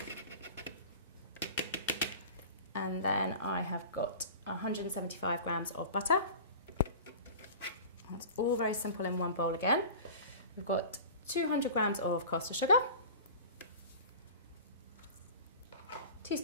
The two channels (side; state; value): both; inverted; correlation -0.38